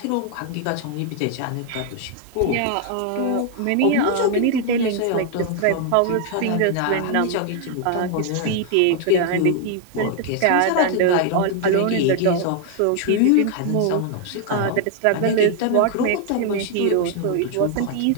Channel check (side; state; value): both; different; correlation 0.00